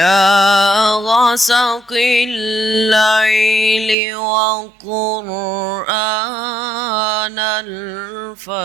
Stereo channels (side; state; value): left; drops out; at 4.0 s